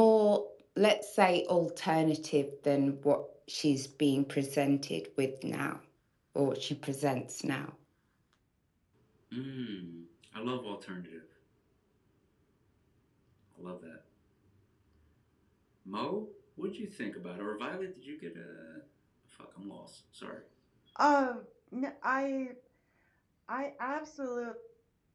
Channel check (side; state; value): both; identical; correlation 1.00